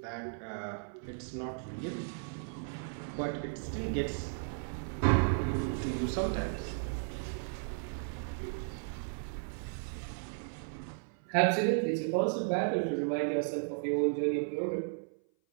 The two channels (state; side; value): silent; left; 54 dB below the other